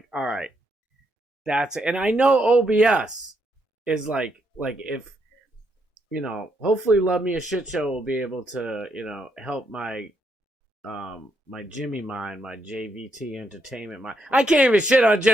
all right, that's it. And I know OBS is like if, you know, hopefully Love Me a Shit Show will be able to, you know, help my my Jimmy mind, my JVT Entertainment mind. I can't even shit on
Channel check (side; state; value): both; normal; correlation 0.77